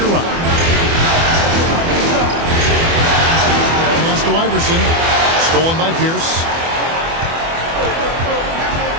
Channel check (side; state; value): left; late; 24 ms